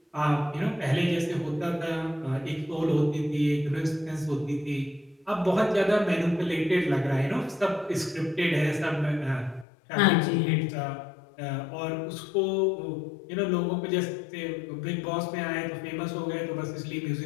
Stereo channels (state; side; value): drops out; right; at 9.7 s